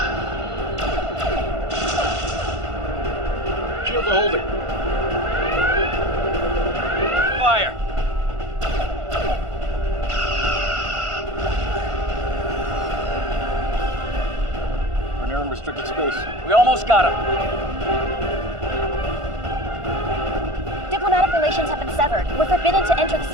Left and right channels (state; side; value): late; left; 1.5 ms